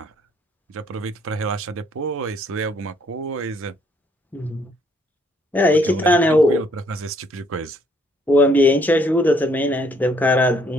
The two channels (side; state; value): both; normal; correlation 0.67